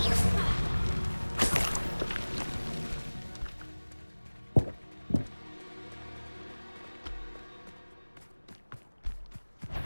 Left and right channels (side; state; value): both; inverted; correlation -1.00